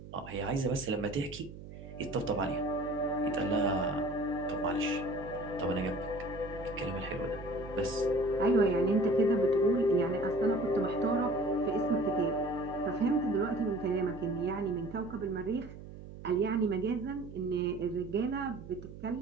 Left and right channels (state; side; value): noise; right; hum, 14 dB below the sound